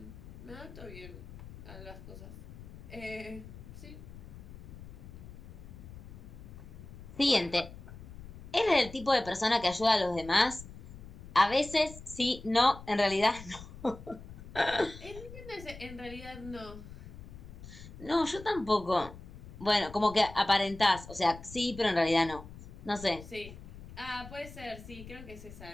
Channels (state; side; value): noise; left; rumble, 15 dB below the sound